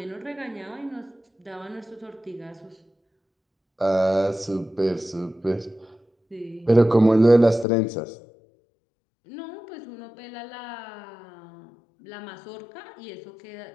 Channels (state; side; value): drops out; right; at 7.7 s